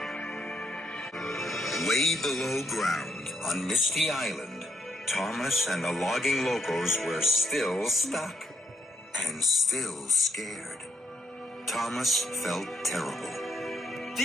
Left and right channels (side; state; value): both; normal; correlation 0.74